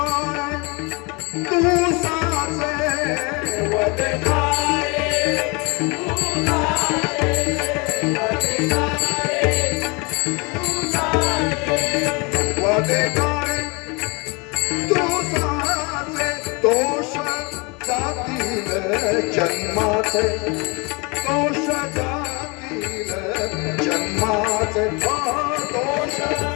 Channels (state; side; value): quieter; right; 29.3 dB